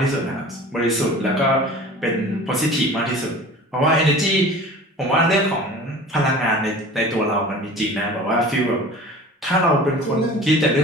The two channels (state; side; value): normal; both; correlation 0.41